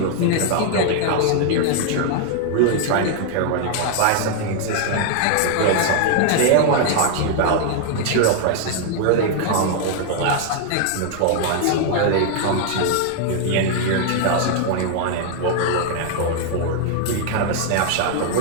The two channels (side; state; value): both; different; correlation 0.00